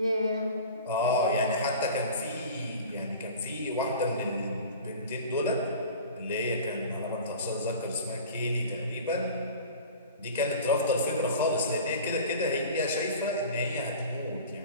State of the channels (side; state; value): both; inverted; correlation -0.39